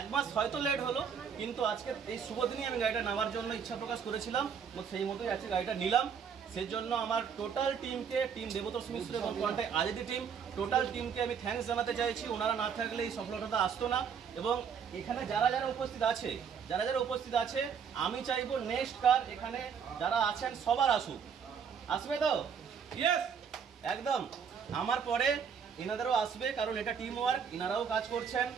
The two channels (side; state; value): left; quieter; 7.0 dB